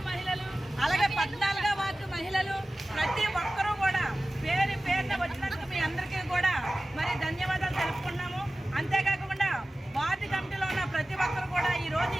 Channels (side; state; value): both; normal; correlation 0.96